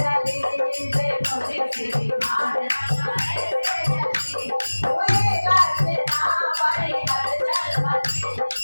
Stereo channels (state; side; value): inverted; both; correlation -1.00